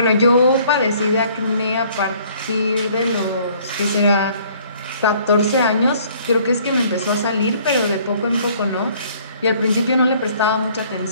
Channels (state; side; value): inverted; both; correlation -0.58